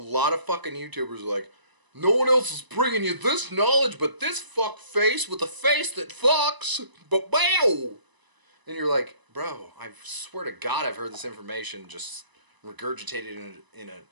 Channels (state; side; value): late; left; 1.0 ms